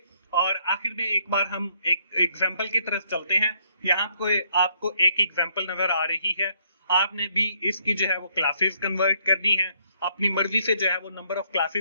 और आखिर में एक बार हम एक एग्जाम्पल की तरफ चलते हैं। यहाँ आपको एक एग्जाम्पल नजर आ रही है, आपने भी इसकी जो है वो क्लासेस कन्वर्ट करनी है अपनी मर्जी से जो है वो नंबर ऑफ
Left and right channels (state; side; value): inverted; both; correlation -0.69